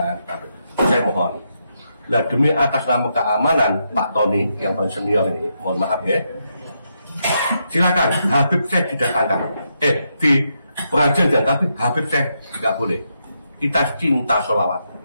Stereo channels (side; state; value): both; inverted; correlation -0.81